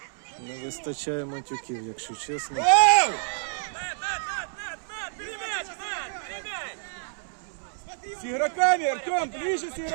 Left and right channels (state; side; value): silent; left; 59 dB below the other